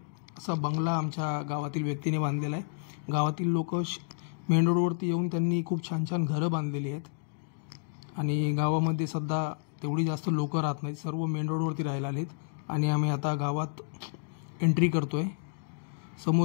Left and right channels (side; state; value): right; silent; digital silence